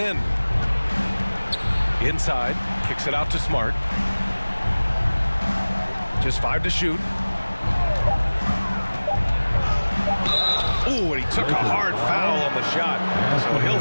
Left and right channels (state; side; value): inverted; both; correlation -1.00